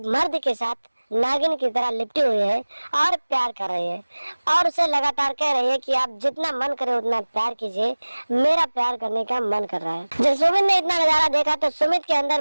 मर्द के साथ नागिन की तरह लिपटी हुई है और प्यार कर रही है और उसे लगातार कह रही है कि आप जितना मन करे उतना प्यार कीजिए, मेरा प्यार करने का मन कर रहा है। जब सुमित ने इतना नजारा देखा तो सुमित के अंदर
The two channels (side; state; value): both; inverted; correlation -1.00